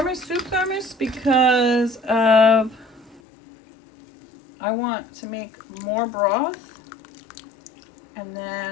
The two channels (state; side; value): drops out; right; at 3.2 s